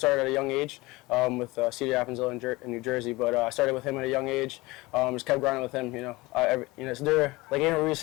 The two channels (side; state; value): right; quieter; 21.7 dB